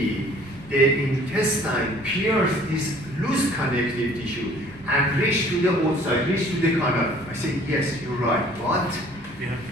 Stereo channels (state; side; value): normal; both; correlation 0.53